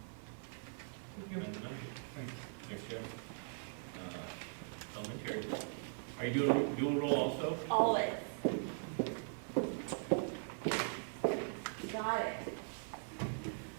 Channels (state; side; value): silent; left; 51 dB below the other